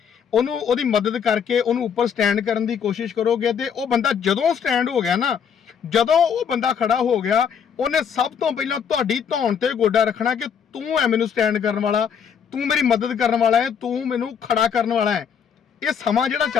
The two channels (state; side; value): quieter; right; 7.4 dB